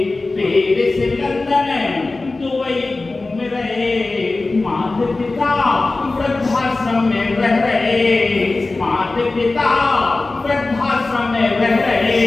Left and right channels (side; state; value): right; quieter; 3.3 dB